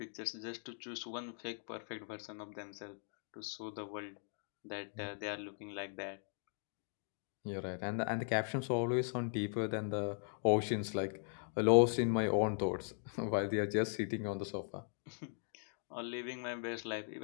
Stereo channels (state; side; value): silent; right; 52 dB below the other